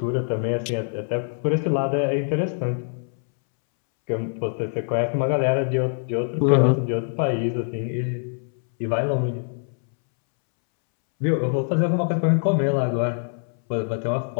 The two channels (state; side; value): silent; right; 63 dB below the other